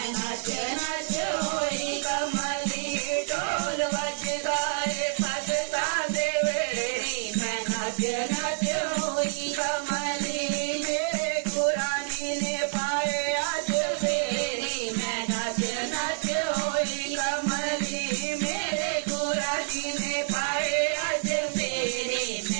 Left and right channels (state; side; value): silent; left; digital silence